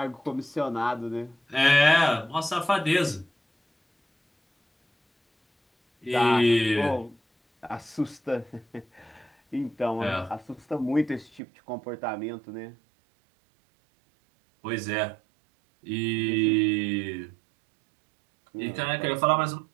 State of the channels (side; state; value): left; drops out; at 11.4 s